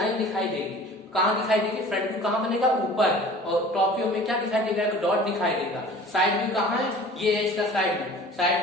दिखाई देगी। कहाँ दिखाई देगी, फ्रंट व्यू कहाँ बनेगा, ऊपर, और टॉप व्यू में क्या दिखाई देगा, एक डॉट दिखाई देगा। साइड व्यू कहाँ है, ये है इसका साइड व्यू।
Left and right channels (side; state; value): both; normal; correlation 0.44